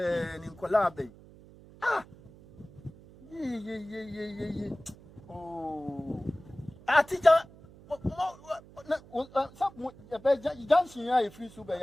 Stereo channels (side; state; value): right; noise; hum, 22 dB below the sound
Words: in Colabe. Ah, ye. Oh, Atija, some dancing, I free super,